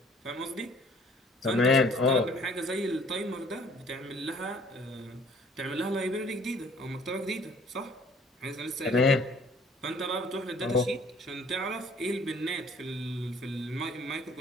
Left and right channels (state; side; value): normal; both; correlation 0.56